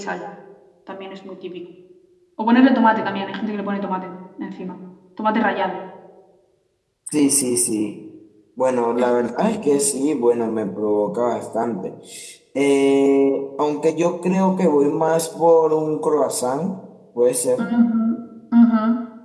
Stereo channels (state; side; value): identical; both; correlation 1.00